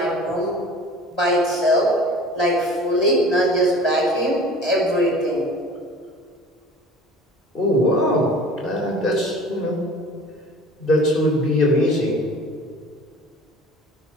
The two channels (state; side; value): normal; both; correlation 0.44